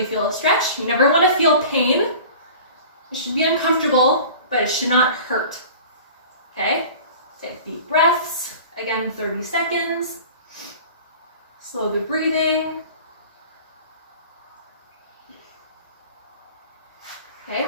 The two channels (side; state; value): both; inverted; correlation -0.41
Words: feel a stretch. You never want to feel pain. It should be uncomfortable, but it should not hurt, okay? Take deep breaths, again 30 seconds. Slow the breathing. Okay,